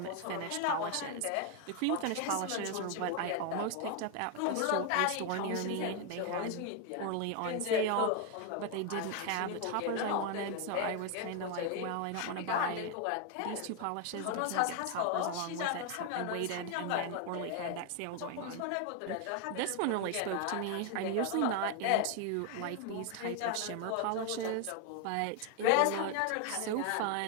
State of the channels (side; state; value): both; different; correlation 0.01